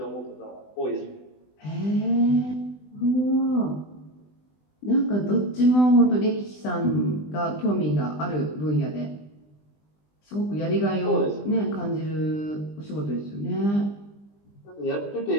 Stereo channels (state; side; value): late; right; 20 ms